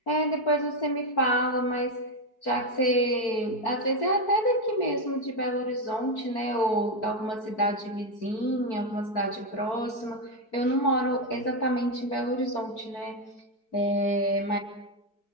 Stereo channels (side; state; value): right; late; 4.6 ms